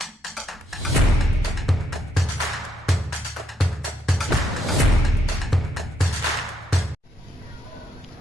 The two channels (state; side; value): normal; both; correlation 0.76